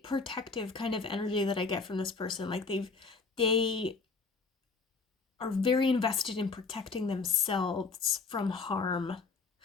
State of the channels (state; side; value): quieter; right; 4.4 dB